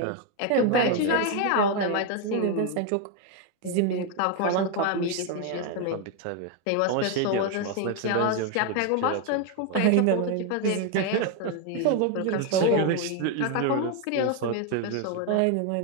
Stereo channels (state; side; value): different; both; correlation 0.01